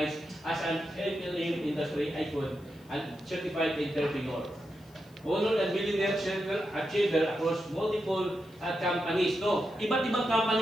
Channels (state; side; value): noise; left; hiss, 29 dB below the sound